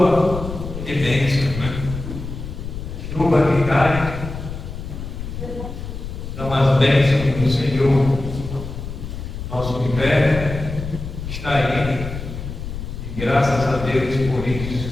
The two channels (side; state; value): left; noise; rumble, 8 dB below the sound